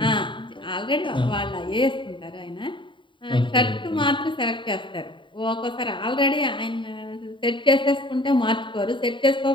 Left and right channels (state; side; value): late; right; 0.23 ms